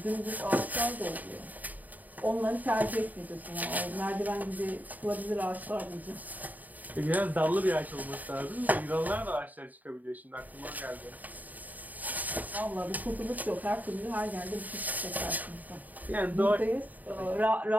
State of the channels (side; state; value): left; late; 0.080 ms